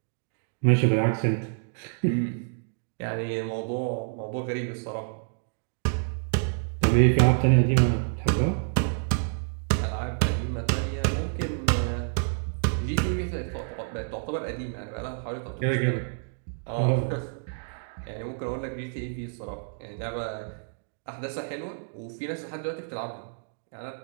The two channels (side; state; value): left; silent; digital silence